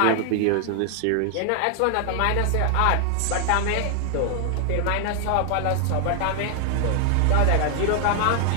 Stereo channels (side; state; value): both; different; correlation 0.00